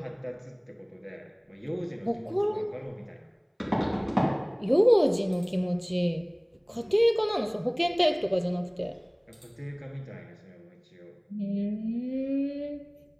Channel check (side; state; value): both; identical; correlation 1.00